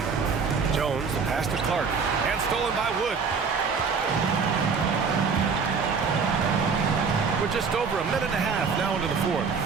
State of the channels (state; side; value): quieter; left; 5.4 dB